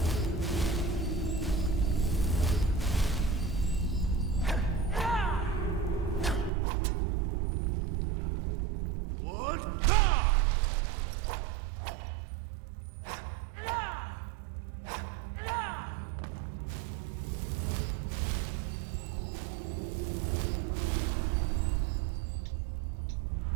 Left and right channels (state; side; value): drops out; left; at 6.5 s